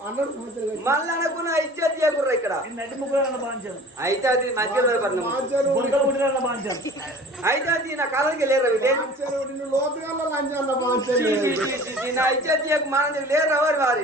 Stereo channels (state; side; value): normal; both; correlation 0.44